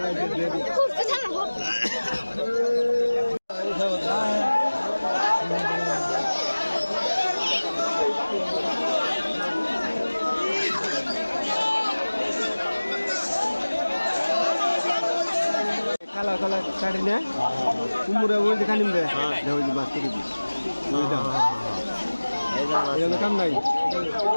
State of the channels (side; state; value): both; inverted; correlation -1.00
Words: কালা কালা কাটি না কুমুরে ওই দেখা নিবে ওই যে মাছ করে দিই এই কাম নাই